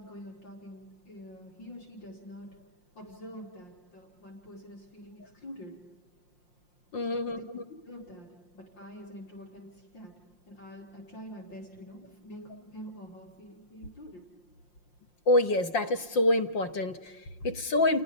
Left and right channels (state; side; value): late; right; 5.7 ms